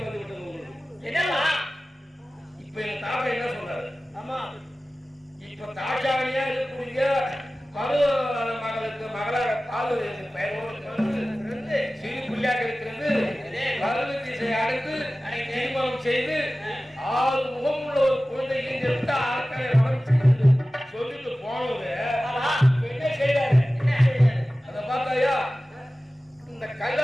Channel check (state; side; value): normal; both; correlation 0.96